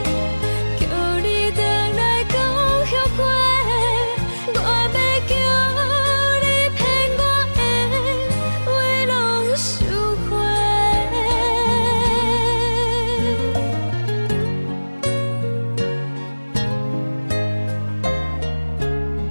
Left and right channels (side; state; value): both; inverted; correlation -1.00